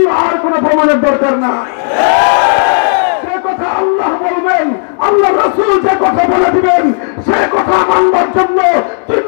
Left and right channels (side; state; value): right; silent; 64 dB below the other